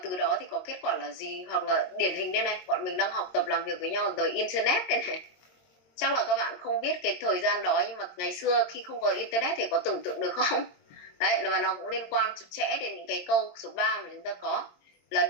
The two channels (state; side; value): late; right; 22 ms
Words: đó thì có kết quả là gì. Hoặc là điển hình đây này, bọn mình đang học tập làm việc với nhau từ internet đây này, chắc là các bạn không biết cái thời gian đó, nhưng mà ngày xưa khi không có internet thì có tưởng tượng được không? Đấy, và nó cũng liên quan chặt chẽ đến những cái câu số 3 mà chúng ta có là